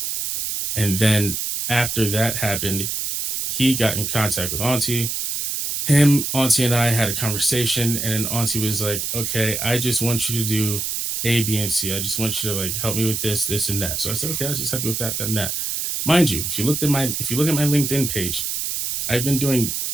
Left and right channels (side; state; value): right; noise; hiss, 2 dB below the sound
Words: And then after that happened, he got in contact with Aunty. Aunty and I had a conversation, and then Aunty was like, okay, I just want you to do A, B, and C. I just want you to help me with this, this, and that. So I said, okay, I'll just help you with that, and that. Mind you, if you look at my LinkedIn page, I've been doing